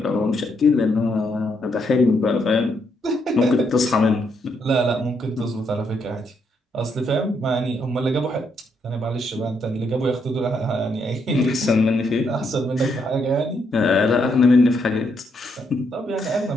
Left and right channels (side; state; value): both; normal; correlation 0.76